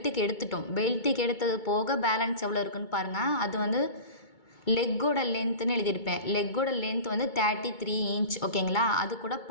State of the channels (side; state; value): right; late; 2.2 ms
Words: எடுத்துட்டோம். பெல்ட்டுக்கு எடுத்தது போக பேலன்ஸ் எவ்வளோ இருக்குன்னு பாருங்கள். அது வந்து லெக்கோட லென்த்துன்னு எழுதியிருப்பேன். லெக்கோட லென்த் வந்து 33 இன்ச் ஓகேங்களா. அது கூட